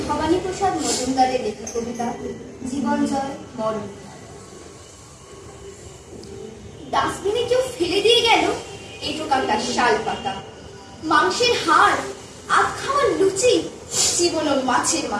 ভবানী প্রসাদ মজুমদারের লেখা কবিতা জীবন জয় মরণ। ডাস্টবিনে কেউ ফেলে দিয়ে গেল এঁটো কাটা শাল পাতা, মাংসের হাড়, আধ খাওয়া লুচি, জীবন মাছের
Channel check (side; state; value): both; identical; correlation 1.00